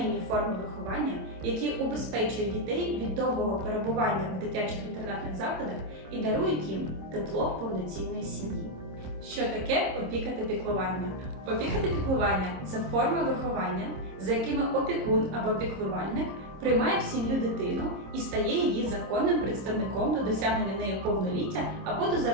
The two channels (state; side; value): late; left; 26 ms